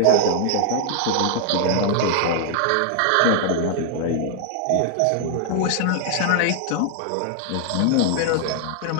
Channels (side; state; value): both; different; correlation -0.01